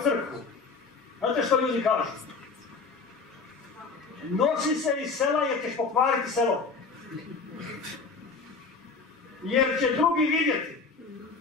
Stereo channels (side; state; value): right; quieter; 4.5 dB